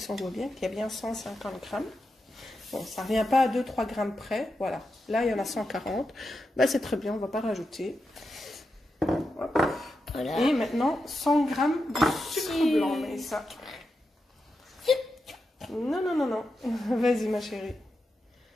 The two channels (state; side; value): normal; both; correlation 0.88